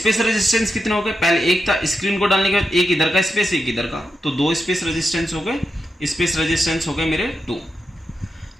रेजिस्टेंस कितने हो गए, पहले एक था, स्क्रीन को डालने के बाद एक इधर का स्पेस एक इधर का, तो 2 स्पेस रेजिस्टेंस हो गए, स्पेस रेजिस्टेंस हो गए मेरे 2।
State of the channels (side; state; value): both; normal; correlation 0.87